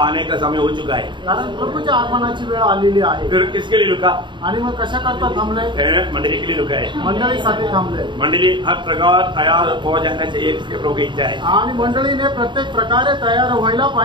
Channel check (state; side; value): late; left; 0.23 ms